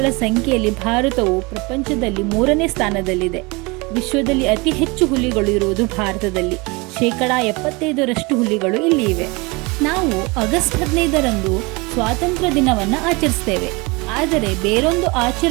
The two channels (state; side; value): quieter; left; 26.4 dB